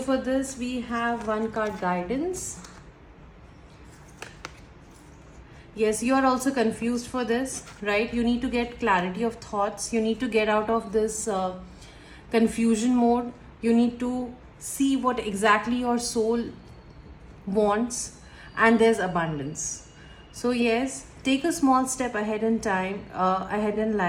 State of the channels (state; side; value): identical; both; correlation 1.00